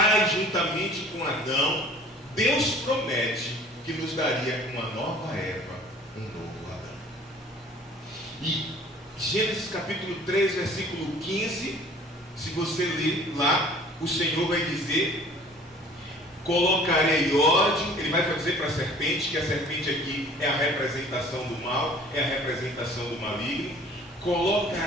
juntamente com Adão, Deus promete que nos daria uma nova Eva, um novo Adão. E Gênesis capítulo 3, versículo 15, se você ler lá, o Senhor vai dizer: colocarei ódio. Ele vai dizer para a serpente, que a serpente aqui é a representação do mal, é a representação do maligno.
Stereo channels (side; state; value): both; normal; correlation 0.50